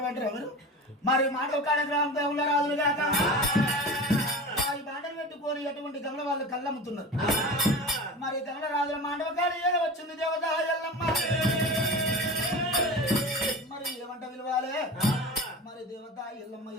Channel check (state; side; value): normal; both; correlation 0.32